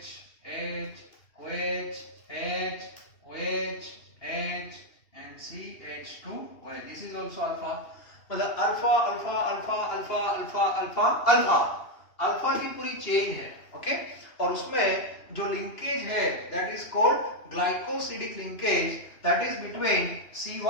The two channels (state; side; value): late; right; 2.8 ms